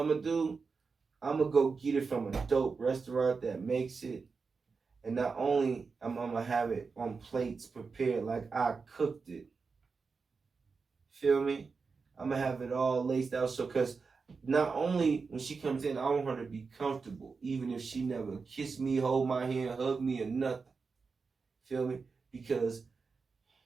gonna do? I'm gonna go get it from a dope restaurant that makes it. And not only I'm gonna have it on plates prepared like I cooked it. Feel me? I'm gonna have it all laced out so cause not only when she comes in, I want her to be comfortable, even if she never kiss me, hold my hand, hug me, or nothing. Feel me? Because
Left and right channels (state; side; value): quieter; left; 4.8 dB